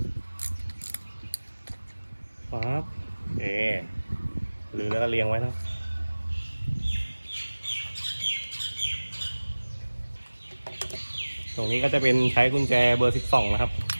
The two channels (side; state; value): both; inverted; correlation -1.00